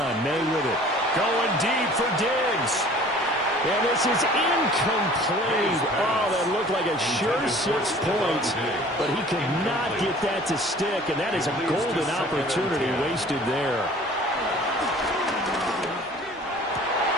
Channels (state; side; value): normal; both; correlation 0.48